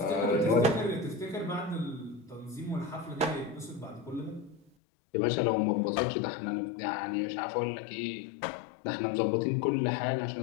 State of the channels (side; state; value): right; drops out; at 4.7 s